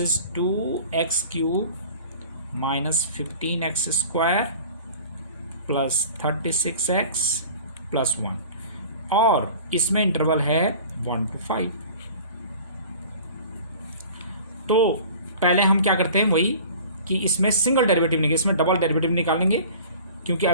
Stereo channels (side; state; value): both; inverted; correlation -0.43